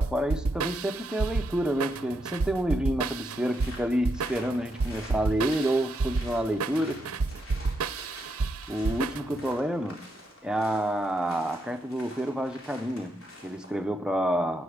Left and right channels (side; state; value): both; normal; correlation 0.81